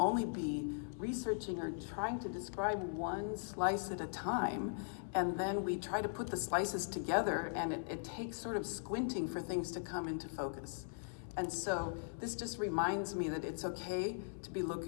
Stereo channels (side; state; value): right; silent; 51 dB below the other